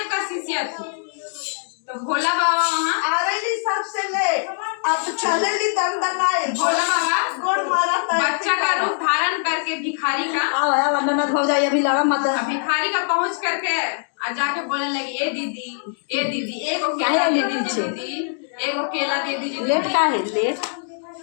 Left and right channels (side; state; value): right; silent; digital silence